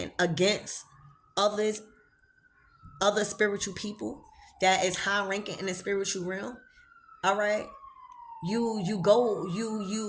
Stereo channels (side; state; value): both; identical; correlation 1.00